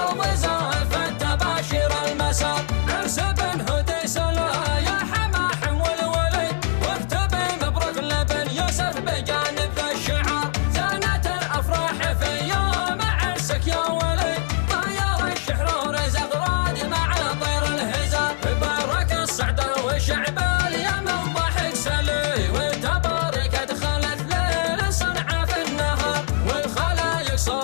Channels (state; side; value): silent; right; digital silence